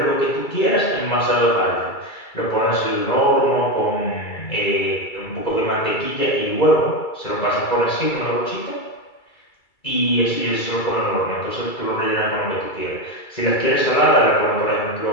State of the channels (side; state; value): right; late; 2.3 ms